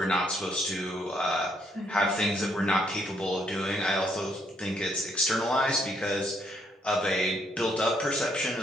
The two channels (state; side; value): normal; both; correlation 0.72